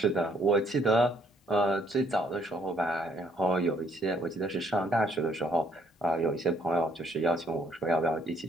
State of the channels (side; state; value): both; normal; correlation 0.66